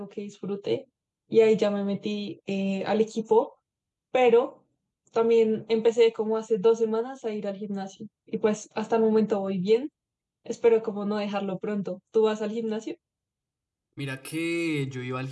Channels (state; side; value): identical; both; correlation 1.00